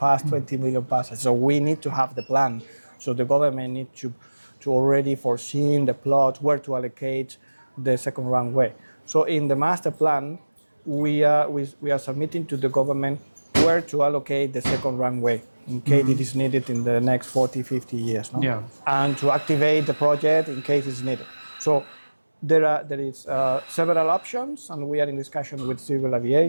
20 million passengers. So we need to have the plan. So the government needs to already foresee the plot where to allocate the second runway. So in the master plan, we are submitting to the government where to allocate the second runway in case it is needed in the next 40, 50 years. No? Yeah. And to activate the project in case it's needed. So there is several options, and we are in discussion with civil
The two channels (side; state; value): both; inverted; correlation -1.00